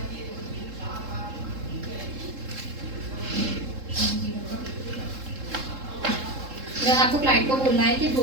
आपको क्लाइंट को बोलना है कि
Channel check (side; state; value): left; late; 3.7 ms